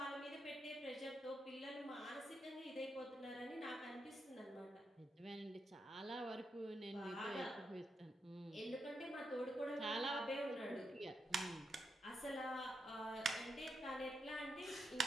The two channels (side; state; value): both; normal; correlation 0.83